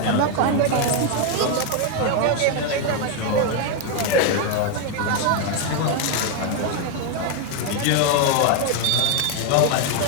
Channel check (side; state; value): both; different; correlation 0.01